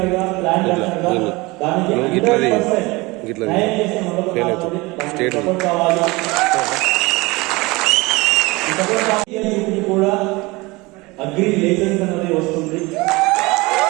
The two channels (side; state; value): left; quieter; 23.3 dB